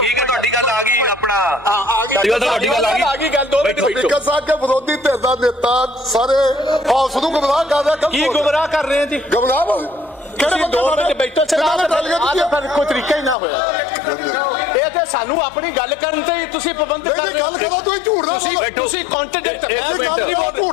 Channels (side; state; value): right; drops out; at 13.4 s